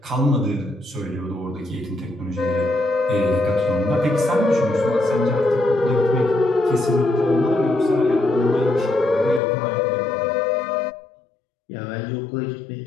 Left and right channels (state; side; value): drops out; right; at 9.4 s